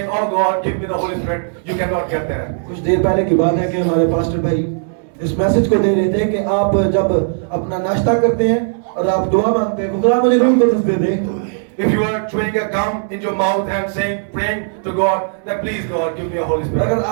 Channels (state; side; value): silent; left; digital silence